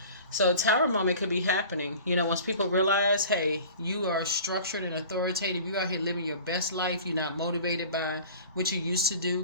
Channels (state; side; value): inverted; both; correlation -0.42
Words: So a Tower moment could be happening. Once people realize, hey, you are structured and authoritative. You out here living your best life. You're not motivated by what you used to do.